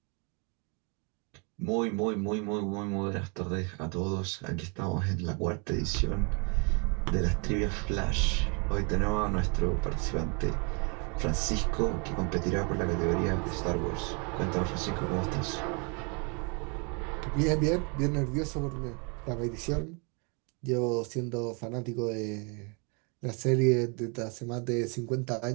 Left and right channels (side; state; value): left; quieter; 34.2 dB